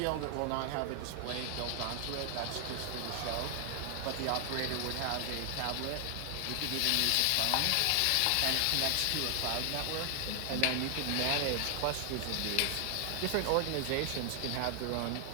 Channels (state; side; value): different; both; correlation 0.00